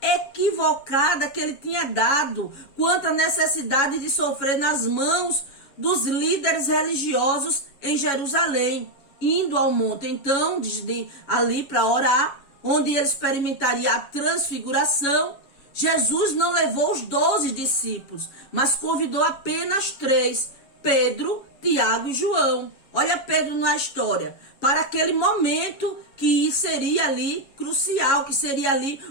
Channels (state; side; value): late; right; 7.2 ms